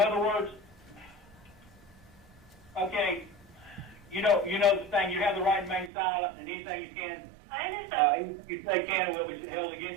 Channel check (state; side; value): drops out; left; at 5.9 s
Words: other words, okay, you know the thing. You have the right to remain silent, and anything you can, I understand. you say can will be held